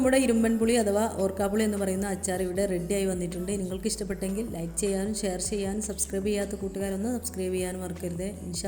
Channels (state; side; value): identical; both; correlation 1.00